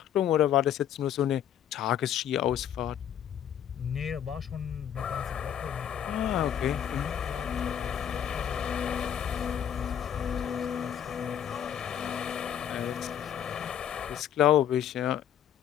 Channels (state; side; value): quieter; right; 9.7 dB